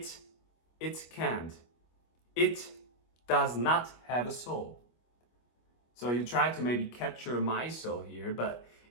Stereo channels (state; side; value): late; right; 25 ms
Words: can't. It does not have a soul. So you try to maybe capture my soul here, but